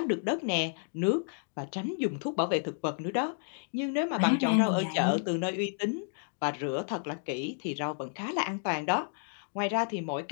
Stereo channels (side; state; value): right; silent; digital silence